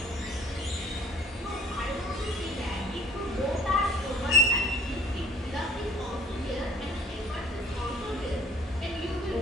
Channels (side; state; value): both; normal; correlation 0.54